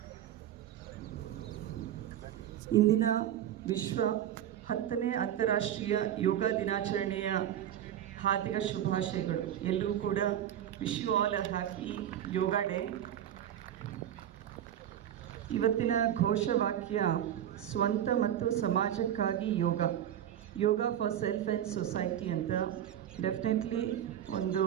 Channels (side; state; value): left; quieter; 10.8 dB